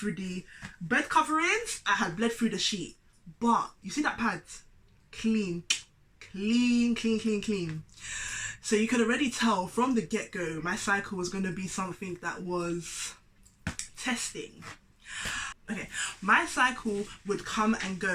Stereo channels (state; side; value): identical; both; correlation 1.00